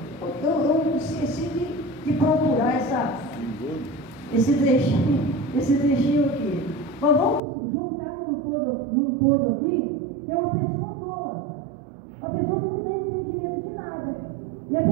Eu esqueci de procurar esse trechinho aqui. Mas vamos juntar num todo aqui, que é uma pessoa tola, uma pessoa que não tem entendimento de nada. E a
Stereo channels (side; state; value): left; drops out; at 7.4 s